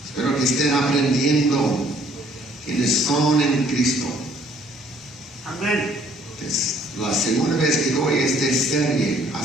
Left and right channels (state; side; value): normal; both; correlation 0.61